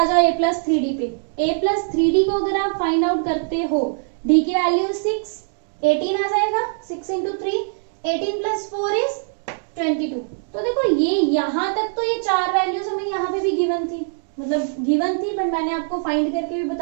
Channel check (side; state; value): left; silent; digital silence